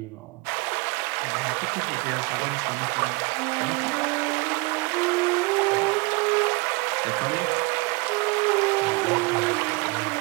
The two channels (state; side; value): quieter; left; 27.5 dB